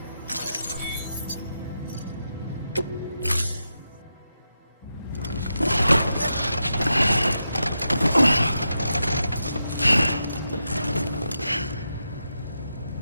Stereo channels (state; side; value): inverted; both; correlation -0.86